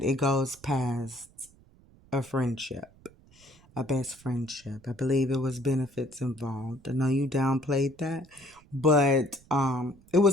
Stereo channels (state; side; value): noise; right; rumble, 27 dB below the sound